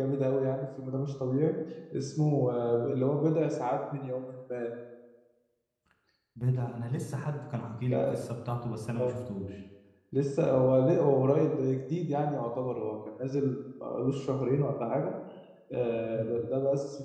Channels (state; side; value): identical; both; correlation 1.00